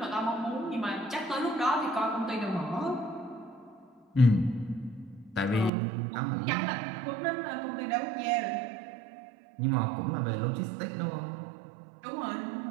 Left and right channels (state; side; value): drops out; left; at 5.7 s